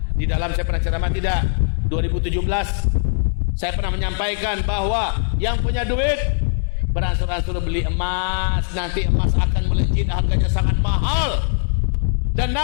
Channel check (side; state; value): right; silent; digital silence